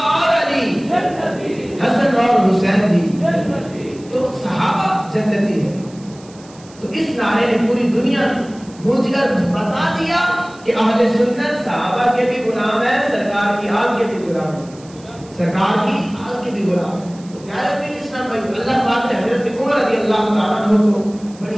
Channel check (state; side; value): noise; right; hiss, 24 dB below the sound